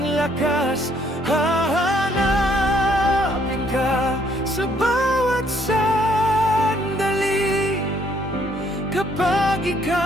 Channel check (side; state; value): both; normal; correlation 0.66